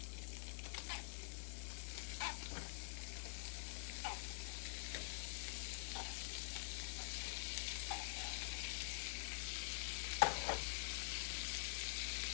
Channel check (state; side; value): silent; right; digital silence